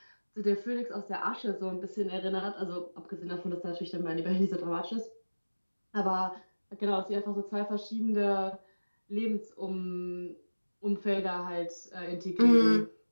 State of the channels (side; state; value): both; inverted; correlation -1.00